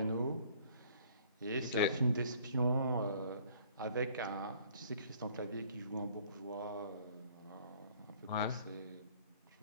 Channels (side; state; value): both; inverted; correlation -0.56